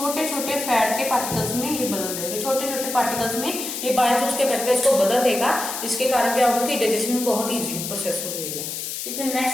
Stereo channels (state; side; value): noise; left; hiss, 5 dB below the sound